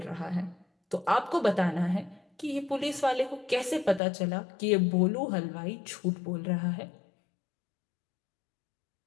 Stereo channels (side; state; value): right; drops out; at 4.0 s